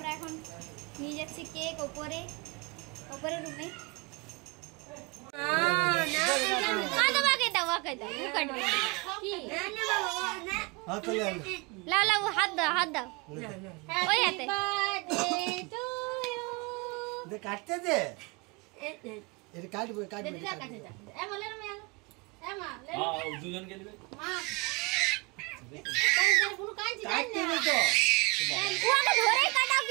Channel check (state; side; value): quieter; left; 28.0 dB